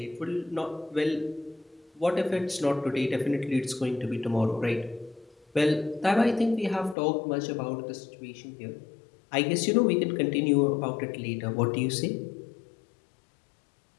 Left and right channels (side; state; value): right; drops out; at 7.0 s